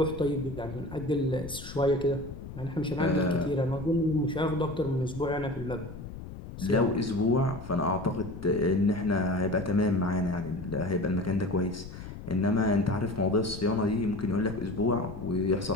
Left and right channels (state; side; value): noise; left; rumble, 12 dB below the sound